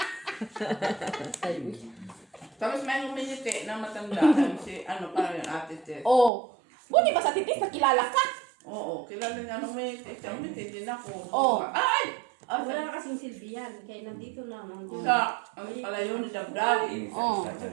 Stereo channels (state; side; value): drops out; left; at 6.3 s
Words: Tapos may uminiti na matanda. Si ano parang yung ate Ted. Oh. Buti ba sa titis, nakilala ka? Oo, kilala niya nung uminiti. Siya uminiti din ako. Oh. Ay! Ah, wala na kasing silbihan. Kaya nandito na. Nandito. Sa, ang pala yun ni Dabdab. Oh. Isa